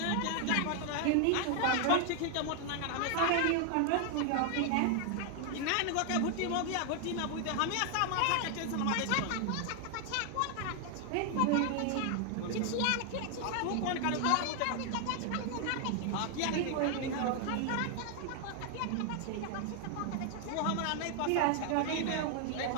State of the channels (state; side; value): different; both; correlation 0.00